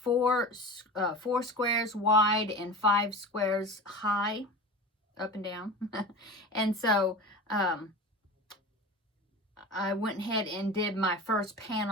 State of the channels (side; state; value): both; normal; correlation 0.32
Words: squares wide and 5 squares high, up and down. And so I went ahead and did my first